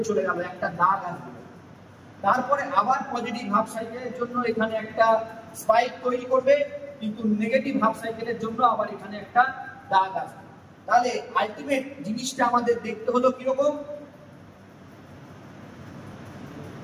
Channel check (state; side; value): identical; both; correlation 1.00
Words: চলে গেল, একটা দাগ আসবে। তারপরে আবার পজিটিভ হাফ সাইকেলের জন্য এখানে একটা স্পাইক তৈরি করবে, কিন্তু নেগেটিভ হাফ সাইকেলের জন্য আবার এখানে একটা দাগ আসবে। তাহলে আলটিমেট জিনিসটা আমাদের দেখতে হলো কিরকম,